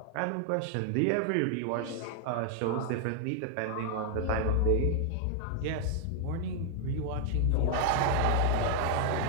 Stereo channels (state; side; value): different; both; correlation 0.00